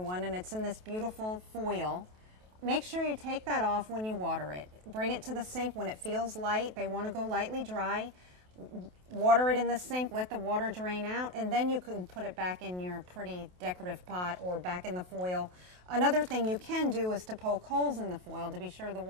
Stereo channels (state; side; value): late; left; 28 ms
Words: and it's in this beautiful foil, make sure you take that off when you water it. Bring it to the sink when it feels light. They want to go lightly dry. Water it in the sink, let the water drain out, and then you can put it back in your pretty decorative pot or back in the foil. Another thing you can do is to poke holes in the foil to be sure the